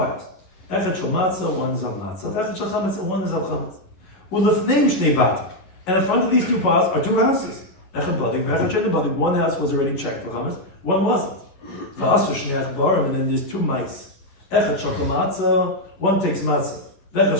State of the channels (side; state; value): right; late; 10 ms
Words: Echad shel matzah, 1 is of matzah. Echad shel chametz, and 1 is of chametz. Ulefneim shnei batim. And in front of these 2 piles are 2 houses. Echad badik, v'echad shel badik. 1 house was already checked for chametz, 1 wasn't. V'asu shnei achbarim, and then there's 2 mice. Echad shel matzah, 1 takes matzah. V'echad